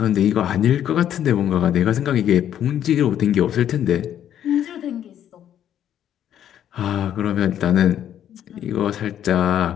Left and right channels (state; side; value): quieter; right; 10.4 dB